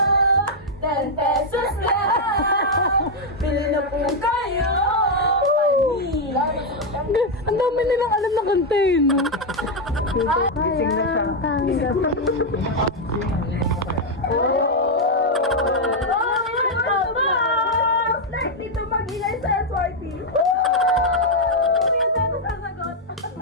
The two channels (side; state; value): both; normal; correlation 0.01